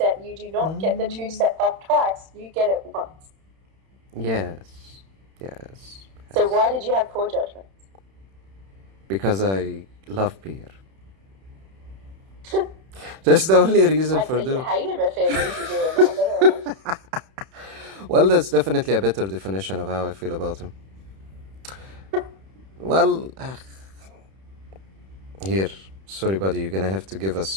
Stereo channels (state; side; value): late; left; 31 ms